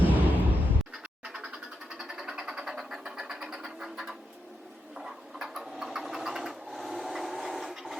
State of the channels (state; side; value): normal; both; correlation 0.84